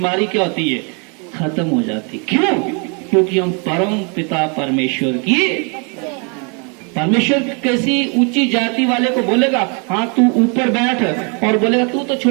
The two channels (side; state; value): left; quieter; 35.6 dB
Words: क्या होती है? खत्म हो जाती। क्यों? क्योंकि हम परम पिता परमेश्वर की, परमेश्वर किसी ऊंची जाति वाले को बोलेगा हाँ तू ऊपर बैठ, और बोलेगा तू तो